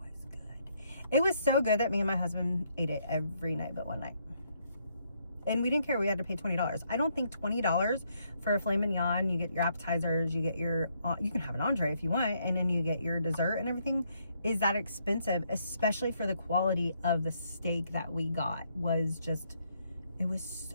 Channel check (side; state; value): both; inverted; correlation -0.73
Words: good. It was so good that me and my husband ate it every night but one night. And we didn't care. We had to pay $20. I don't think $20 for a filet mignon, you get your appetizers, you get your, you can have an entree if you want, and then you get your dessert and everything, is that expensive, especially for the quality of the steak that we got. Was just, it was